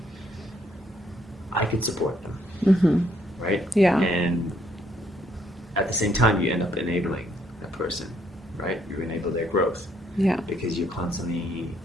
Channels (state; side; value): normal; both; correlation 0.70